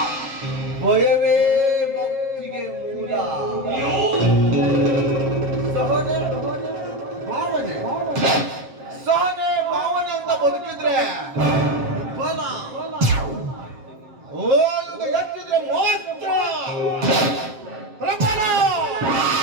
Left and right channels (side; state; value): left; late; 7.6 ms